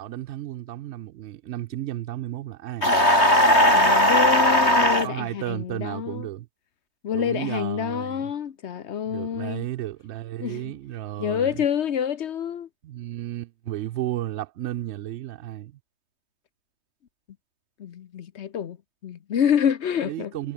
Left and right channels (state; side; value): late; right; 3.2 ms